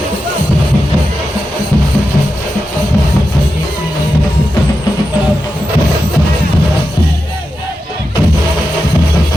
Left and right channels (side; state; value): both; normal; correlation 0.90